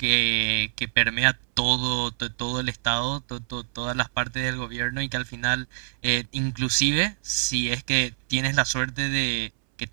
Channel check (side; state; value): left; silent; 61 dB below the other